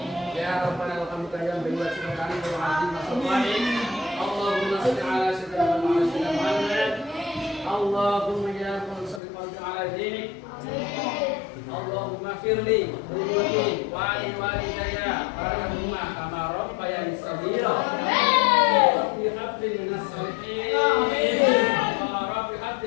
Ya rabbana lakal hamdu ya bi wajhika karim wa azim masallim. Allahumma shalli ala sayyidina Muhammad. Allahumma ya salli ala dinik. Allahumma firli wali walidayya warhamhuma kama rabbayani shaghira. Rabbi habli minas shalihin. Rabbi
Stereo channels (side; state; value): right; drops out; at 9.2 s